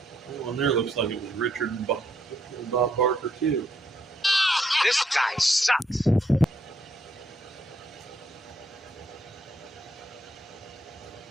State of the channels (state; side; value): normal; both; correlation 0.73